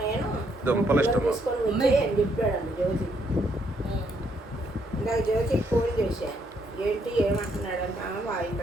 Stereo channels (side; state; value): both; normal; correlation 0.73